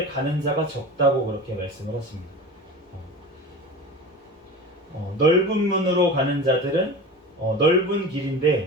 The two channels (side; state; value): both; normal; correlation 0.33